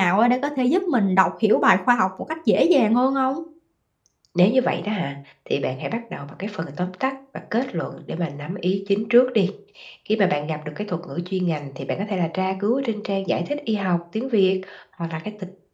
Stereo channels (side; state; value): both; identical; correlation 1.00